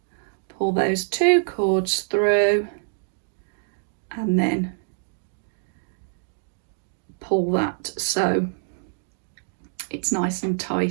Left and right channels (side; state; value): left; silent; digital silence